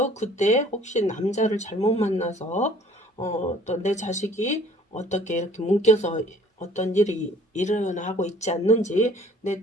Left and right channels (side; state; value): both; normal; correlation 0.55